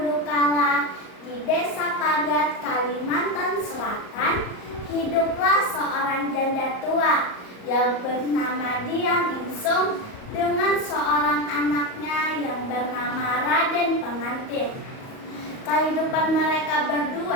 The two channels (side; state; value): right; late; 38 ms